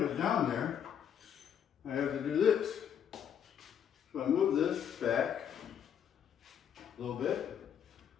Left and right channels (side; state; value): right; quieter; 8.6 dB